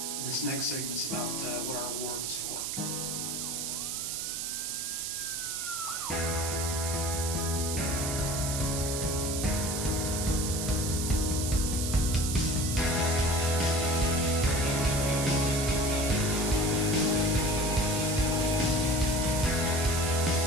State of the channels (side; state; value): right; noise; hiss, 3 dB below the sound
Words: This next segment's about what our award was for.